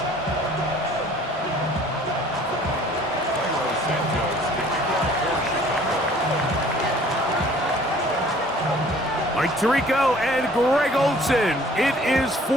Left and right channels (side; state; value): both; normal; correlation 0.54